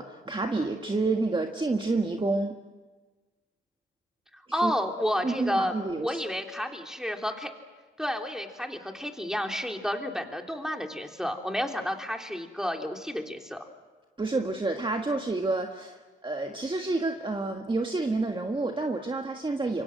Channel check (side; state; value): both; normal; correlation 0.80